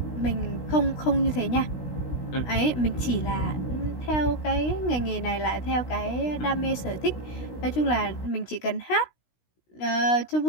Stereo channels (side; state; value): right; late; 16 ms